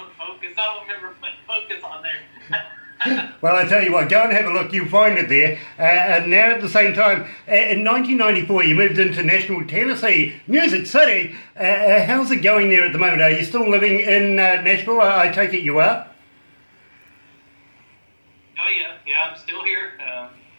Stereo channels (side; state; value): both; inverted; correlation -1.00